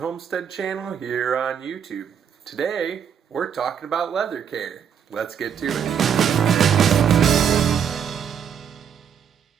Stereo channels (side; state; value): left; quieter; 8.0 dB